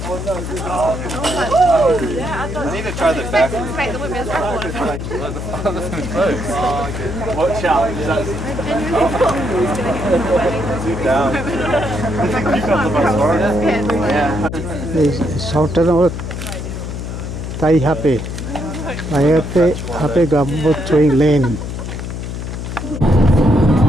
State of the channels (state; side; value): noise; left; hum, 6 dB below the sound